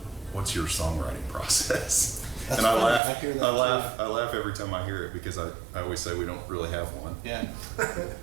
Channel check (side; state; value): left; drops out; at 3.0 s